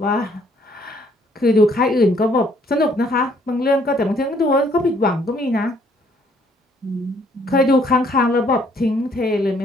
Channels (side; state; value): both; normal; correlation 0.65